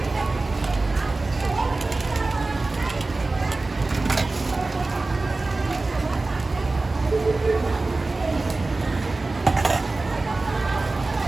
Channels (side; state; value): left; quieter; 3.3 dB